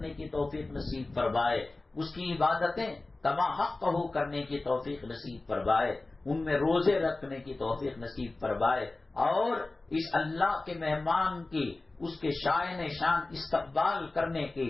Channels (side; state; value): right; quieter; 3.1 dB